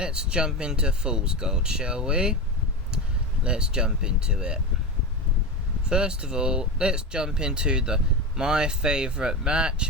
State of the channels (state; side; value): normal; both; correlation 0.21